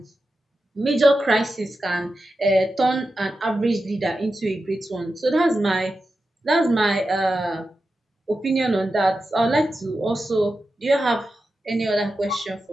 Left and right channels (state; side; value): normal; both; correlation 0.91